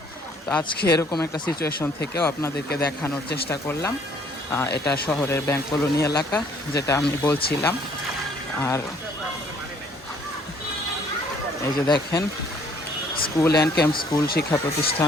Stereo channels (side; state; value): both; normal; correlation 0.61